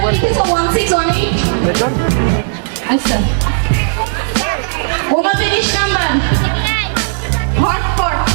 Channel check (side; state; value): left; silent; digital silence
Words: লিখেছো 1618 রেকর্ড আচ্ছা 29 নম্বর হটপট